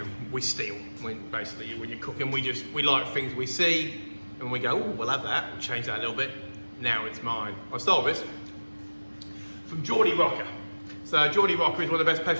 we steal. Basically, when you're cooking, we like things we see, and we go, oh, we'll have that, we'll change that a little bit. Now it's mine. I stole this from Geordie Rocker. So Geordie Rocker is one of the best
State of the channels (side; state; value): both; inverted; correlation -1.00